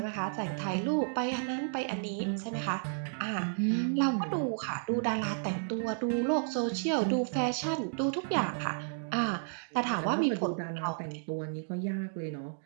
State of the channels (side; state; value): left; silent; digital silence